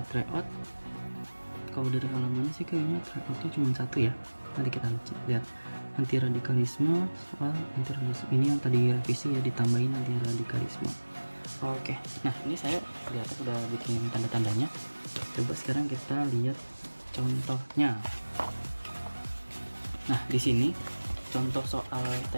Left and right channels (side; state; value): both; inverted; correlation -1.00